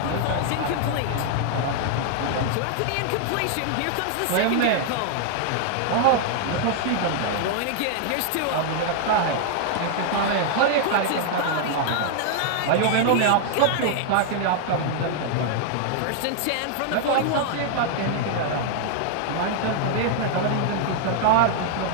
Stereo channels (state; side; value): different; both; correlation 0.00